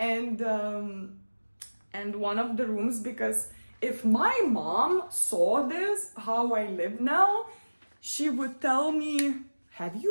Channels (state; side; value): inverted; both; correlation -1.00